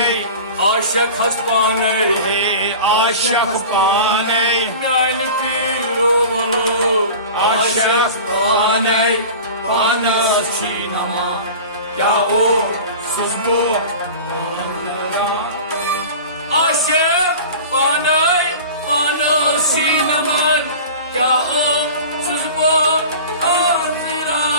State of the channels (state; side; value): inverted; both; correlation -0.36